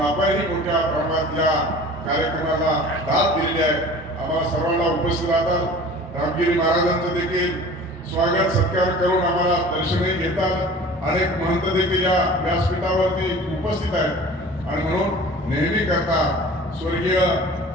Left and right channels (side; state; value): both; normal; correlation 0.42